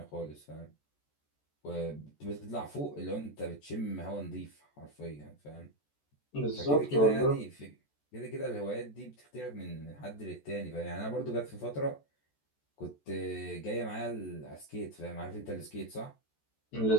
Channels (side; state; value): right; late; 14 ms